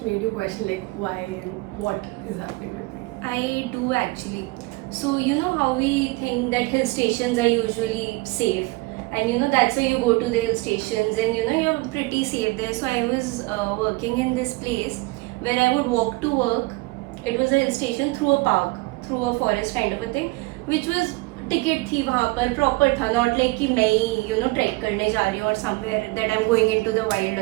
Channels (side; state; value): left; quieter; 23.0 dB